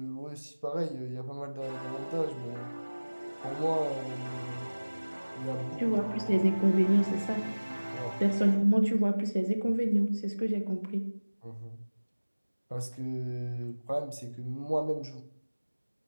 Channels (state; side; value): inverted; both; correlation -1.00